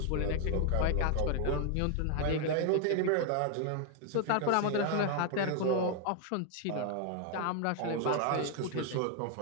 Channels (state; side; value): different; both; correlation 0.00